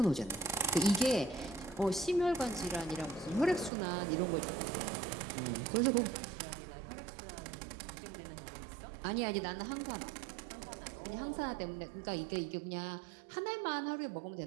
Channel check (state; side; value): drops out; left; at 3.7 s